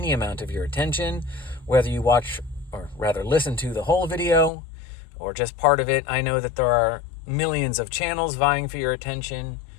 amount of your attention, whether you watch, or rather listen to the whole video, or just part of it. I know that there are millions of channels vying for your attention,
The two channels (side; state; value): right; drops out; at 4.5 s